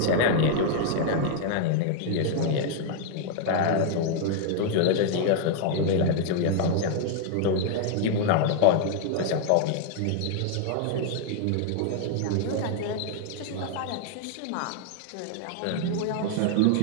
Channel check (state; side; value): different; both; correlation 0.00